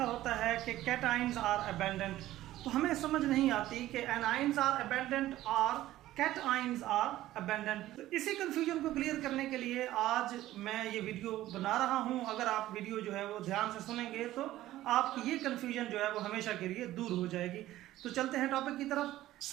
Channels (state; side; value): quieter; left; 14.9 dB